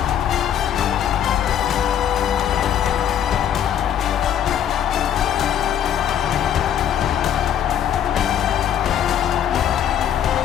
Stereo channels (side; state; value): right; quieter; 9.8 dB